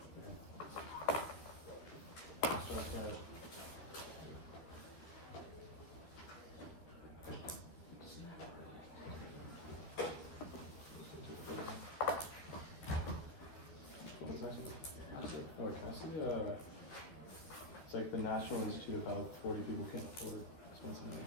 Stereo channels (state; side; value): late; right; 12 ms